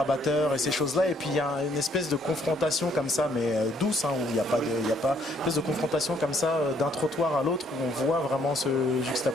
et ces choses-là, et puis il y a une espèce de confrontation comme ça, mais douce, où il n'y a pas une espèce de confrontation comme ça d'un trottoir à l'autre, où on voit vraiment se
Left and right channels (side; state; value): both; normal; correlation 0.66